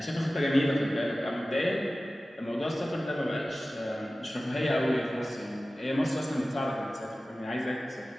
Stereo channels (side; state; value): both; normal; correlation 0.96